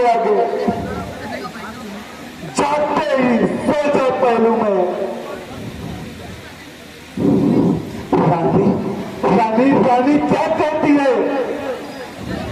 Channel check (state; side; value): identical; both; correlation 1.00